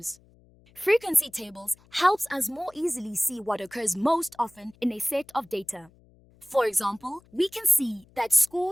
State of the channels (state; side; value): noise; left; hum, 29 dB below the sound